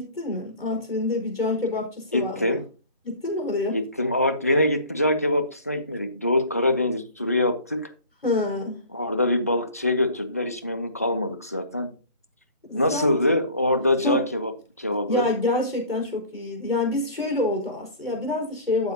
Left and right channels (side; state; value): both; inverted; correlation -0.42